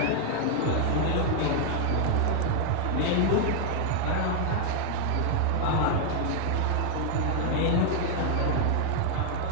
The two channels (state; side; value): different; both; correlation 0.00